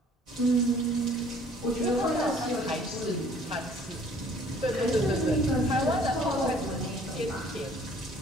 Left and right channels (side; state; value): both; normal; correlation 0.55